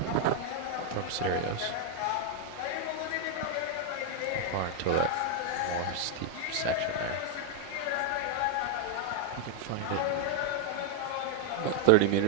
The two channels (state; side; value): different; both; correlation 0.00